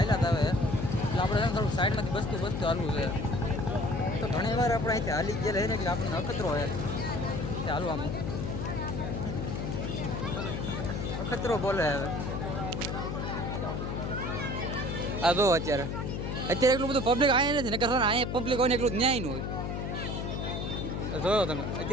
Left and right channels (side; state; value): left; noise; hum, 3 dB below the sound